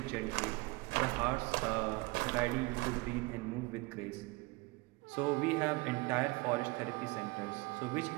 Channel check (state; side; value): quieter; left; 24.2 dB